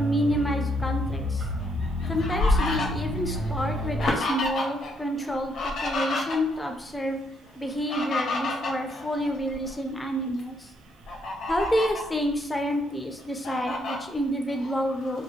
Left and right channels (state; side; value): normal; both; correlation 0.73